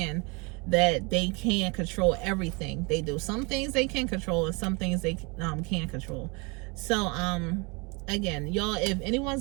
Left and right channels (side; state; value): left; quieter; 29.4 dB